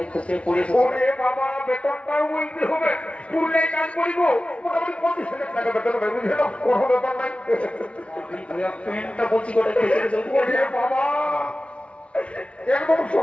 খসে পড়েছে ওরে বাবা বেতনটাও বলতে হবে পুরুলে কাজ করিব মোটামুটি 25,000 টাকা বেতন হবে বুঝলে না কোনো ব্যাপার নাই প্যান্টটা বলছি কোথায় খসে গেছে ওরে বাবা একদম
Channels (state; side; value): late; right; 0.061 ms